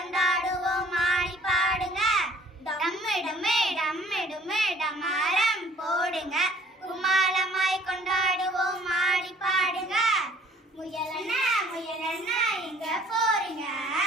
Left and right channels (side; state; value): both; normal; correlation 0.56